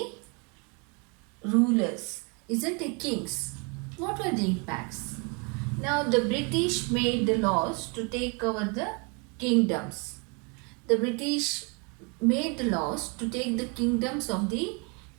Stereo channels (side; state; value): left; quieter; 33.3 dB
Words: rulers, isn't it kings? What were the impacts? Now the British made the laws to take over the kingdoms. The British made the laws to take the kingdoms of the